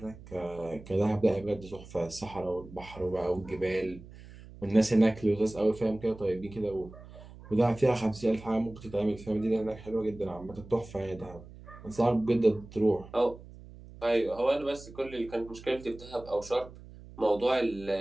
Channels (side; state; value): right; noise; hum, 18 dB below the sound